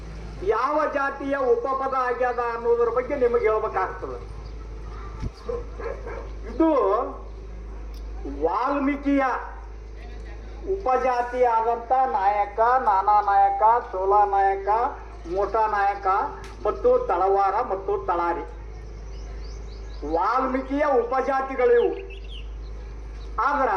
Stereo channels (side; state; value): both; identical; correlation 1.00